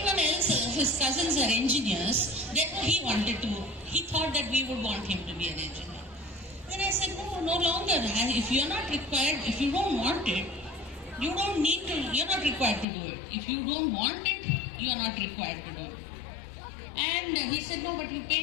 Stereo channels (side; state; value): right; drops out; at 12.9 s